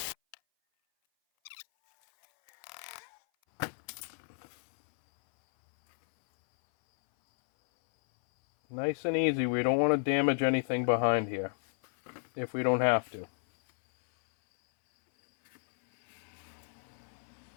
Nice and easy. We don't want to damage anything behind here if we don't have to.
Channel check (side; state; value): right; silent; 56 dB below the other